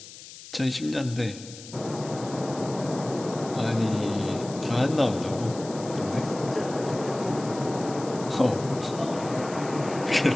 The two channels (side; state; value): left; noise; hiss, 15 dB below the sound